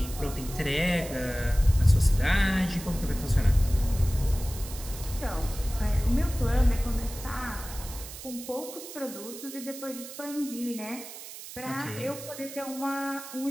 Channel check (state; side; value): noise; right; hiss, 13 dB below the sound